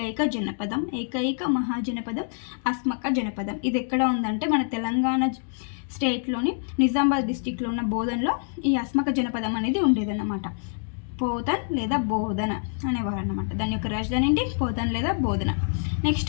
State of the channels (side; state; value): right; silent; 61 dB below the other